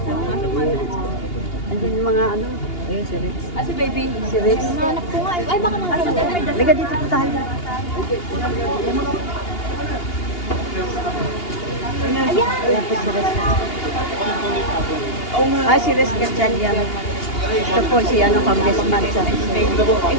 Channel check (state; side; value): late; right; 2.8 ms